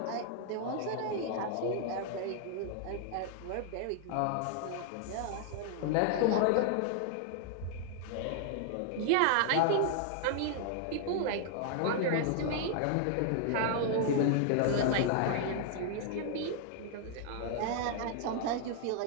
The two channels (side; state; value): both; different; correlation 0.00